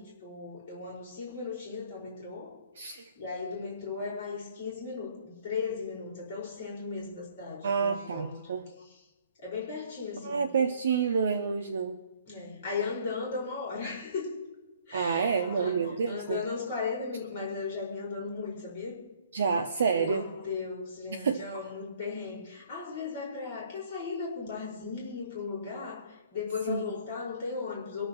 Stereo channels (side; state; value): both; inverted; correlation -0.59